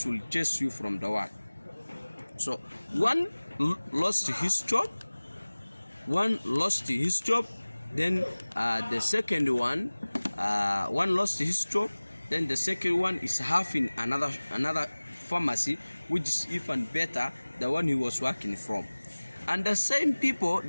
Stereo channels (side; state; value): both; inverted; correlation -1.00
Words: will chase you from the work. So one lost his job, then the second one lost his job, then the second one is having another pharmacy which is even better than one he was working from. And the same people,